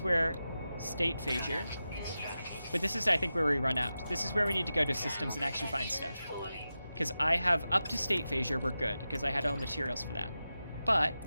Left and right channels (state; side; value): inverted; both; correlation -0.92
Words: where state phasure. But this is, I think, where we run out. This is where we need to go to systems and actually find stuff. Because I have up to state phasure, we're good, because I had all materials for that.